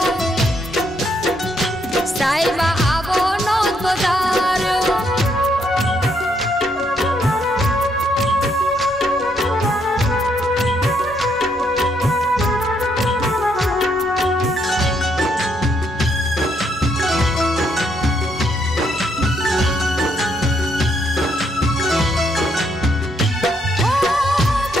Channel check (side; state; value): both; normal; correlation 0.73